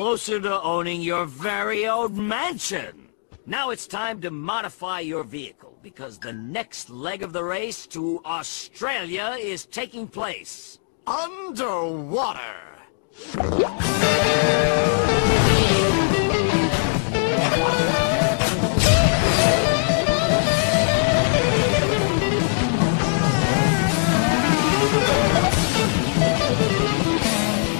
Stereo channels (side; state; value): right; silent; digital silence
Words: to owning your very own mansion. Now it's time to modify your vehicle, because the next leg of the race to Australia is taking place underwater.